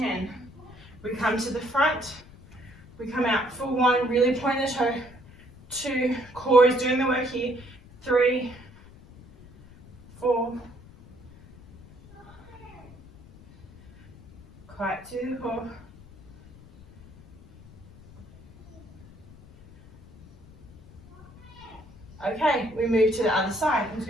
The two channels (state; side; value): noise; left; rumble, 22 dB below the sound